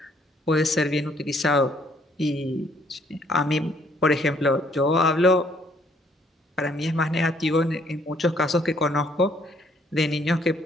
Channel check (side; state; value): both; normal; correlation 0.65